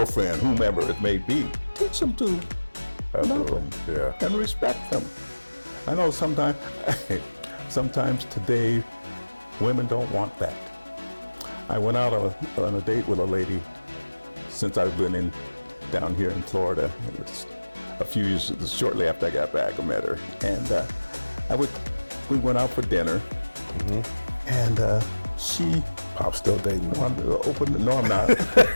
whomever it may be. Teach them to love them and respect them. I know sometimes today, women don't want that. I went out on a date with a lady since I've been down here in Florida. It was a few years, shortly after I got back, I met her, and we went out for dinner, and she I'm still dating. wanted to open. No, I'm not.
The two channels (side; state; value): both; inverted; correlation -1.00